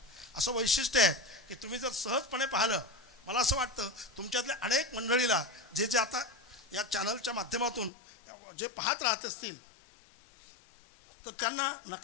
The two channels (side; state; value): right; drops out; at 7.9 s